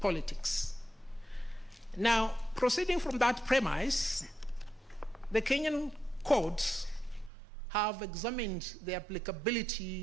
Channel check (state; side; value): drops out; left; at 7.3 s